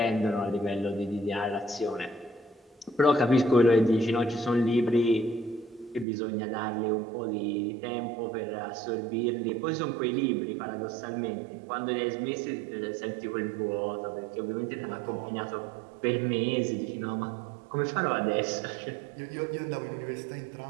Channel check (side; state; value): left; drops out; at 6.1 s